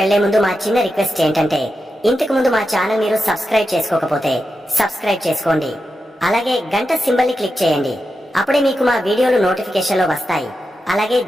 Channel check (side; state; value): both; normal; correlation 0.89